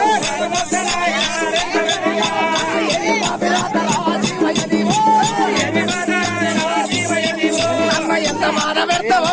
అమ్మ ఎంత మాట పెడతావో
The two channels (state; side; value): identical; both; correlation 1.00